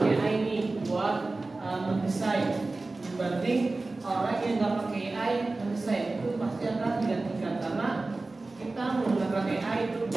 AI ini buat mendesain, dibanding orang yang nggak pakai AI mendesain, itu pasti akan digantikan karena kita menggunakan AI itu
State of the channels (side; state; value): left; quieter; 3.3 dB